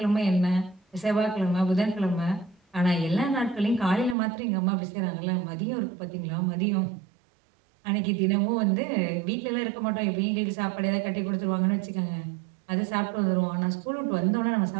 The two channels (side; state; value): left; drops out; at 4.2 s